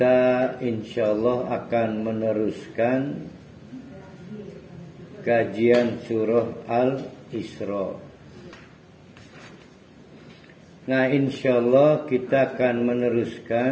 insyaallah akan meneruskan kajian surah Al-Isra. Nah, insyaallah kita akan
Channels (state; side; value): identical; both; correlation 1.00